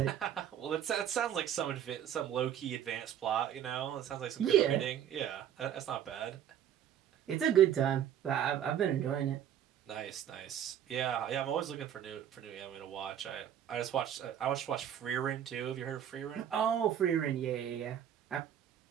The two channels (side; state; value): left; quieter; 9.9 dB